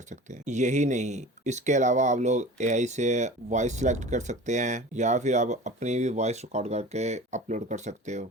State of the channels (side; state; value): both; normal; correlation 0.38